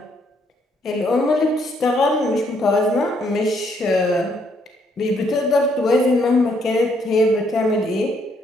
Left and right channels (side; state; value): both; normal; correlation 0.71